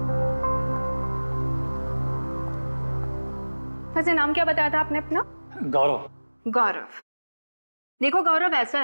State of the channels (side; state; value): both; inverted; correlation -1.00